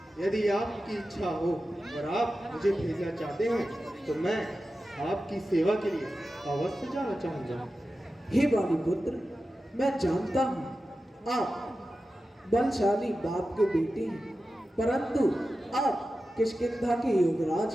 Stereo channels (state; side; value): normal; both; correlation 0.93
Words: यदि आपकी इच्छा हो और आप मुझे भेजना चाहते हैं तो मैं आपकी सेवा के लिए अवश्य जाना चाहूँगा। हे बाली पुत्र, मैं जानता हूँ आप बलशाली बाप के बेटे हैं, परंतु आप किष्किंधा के युवराज